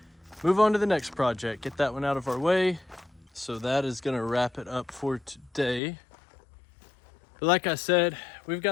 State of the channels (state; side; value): drops out; right; at 5.8 s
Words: move on to the next project. Get that one out of our way. So that is going to wrap it up for today. But like I said, we've